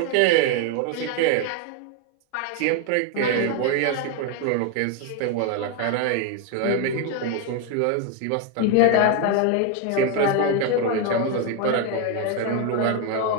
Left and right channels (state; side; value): different; both; correlation 0.01